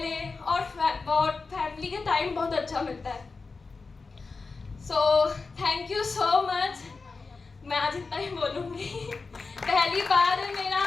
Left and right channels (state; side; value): quieter; right; 4.2 dB